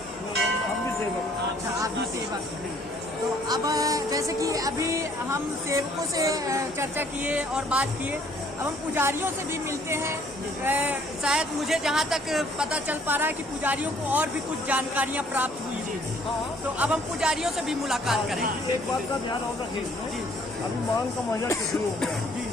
हम भी सेवक। अच्छा, आप भी सेवक हैं। तो अब जैसे कि अभी हम सेवकों से चर्चा किए और बात किए, अब हम पुजारियों से भी मिलते हैं। शायद मुझे जहाँ तक पता चल पा रहा है कि पुजारियों को और भी कुछ जानकारियाँ प्राप्त हुई हैं। तो अब हम पुजारियों से भी मुलाकात करेंगे। एक बात का ध्यान और रखिए, अभी माघ का महीना शुरू हो गया जी,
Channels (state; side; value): normal; both; correlation 0.61